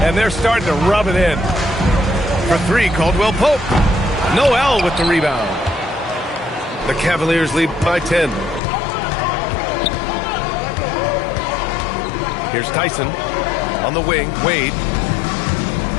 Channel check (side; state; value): right; drops out; at 8.6 s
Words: and they're starting to rub it in. For three, Caldwell Pope. Noel with the rebound. The Cavaliers lead by 10. Here's Tyson on the wing. Wade.